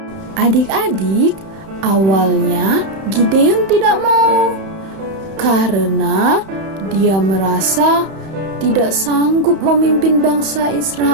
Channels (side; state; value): left; late; 31 ms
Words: Adik-adik, awalnya Gideon tidak mau. karena dia merasa tidak sanggup memimpin bangsa